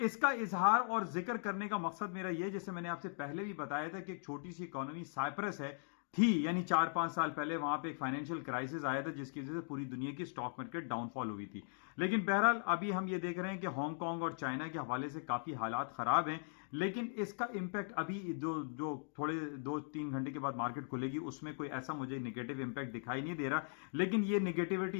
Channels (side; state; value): right; silent; digital silence